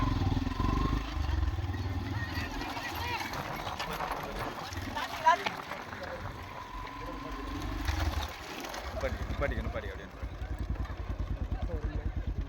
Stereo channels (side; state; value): both; identical; correlation 1.00